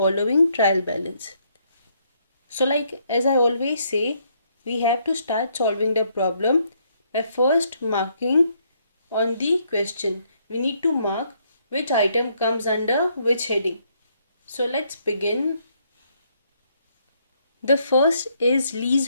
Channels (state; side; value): inverted; both; correlation -0.71